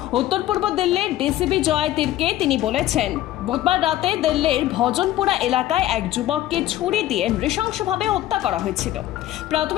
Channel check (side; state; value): right; quieter; 14.1 dB